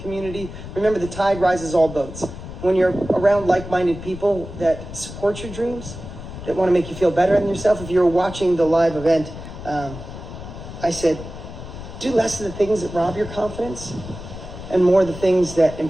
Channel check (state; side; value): noise; left; rumble, 12 dB below the sound